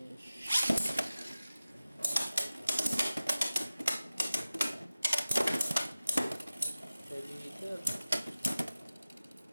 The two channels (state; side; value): inverted; both; correlation -0.96